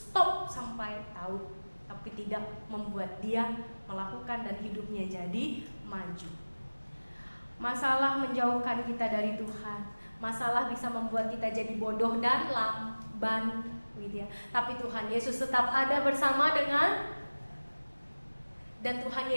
sampai tahu, tapi tidak membuat dia melakukan dan hidupnya jadi maju. Masalah menjauhkan kita dari Tuhan, masalah bisa membuat kita jadi bodoh dan lamban gitu ya. Tapi Tuhan Yesus tetap ada bersama dengan, dan Tuhan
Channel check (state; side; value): inverted; both; correlation -1.00